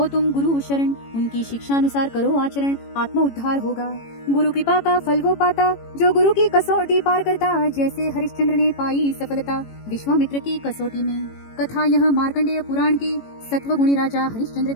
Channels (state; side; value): late; right; 18 ms